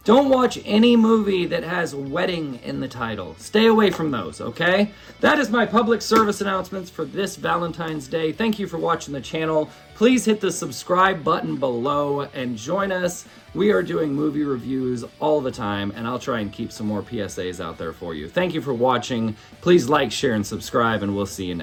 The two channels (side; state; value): both; identical; correlation 1.00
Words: don't watch any movie that has wedding in the title. Stay away from those, okay? That is my public service announcements for this Valentine's Day. Thank you for watching the channel. Please hit the subscribe button below and join us. We are doing movie reviews all the time, and I'll try and keep some more PSAs out there for you. Thank you for watching. Please like, share, and subscribe, and we'll see you